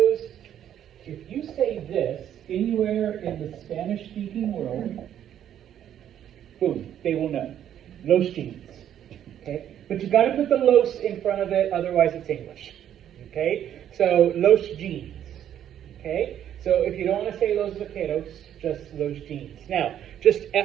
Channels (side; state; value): left; quieter; 10.4 dB